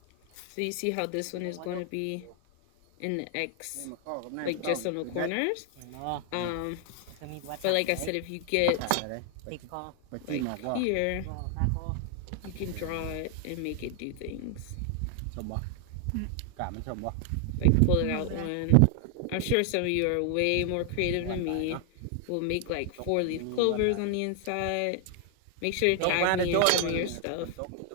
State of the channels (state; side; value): different; both; correlation 0.00